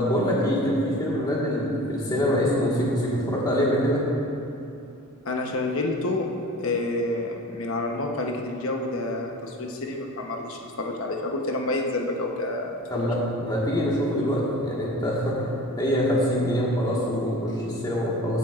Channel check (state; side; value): normal; both; correlation 0.39